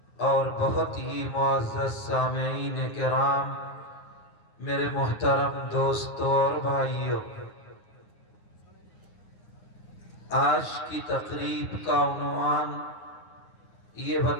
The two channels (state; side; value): late; right; 9.6 ms